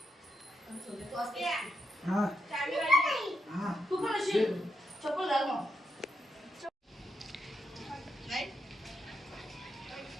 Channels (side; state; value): both; normal; correlation 0.82